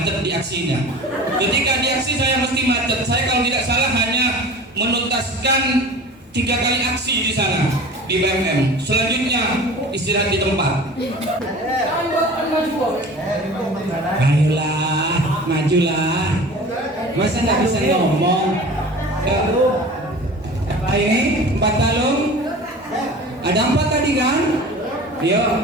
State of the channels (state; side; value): normal; both; correlation 0.39